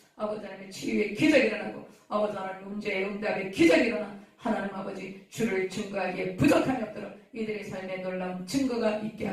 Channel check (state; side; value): identical; both; correlation 1.00